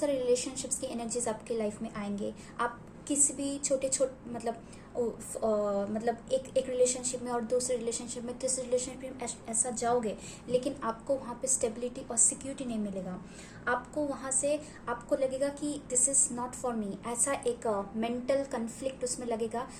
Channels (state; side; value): identical; both; correlation 1.00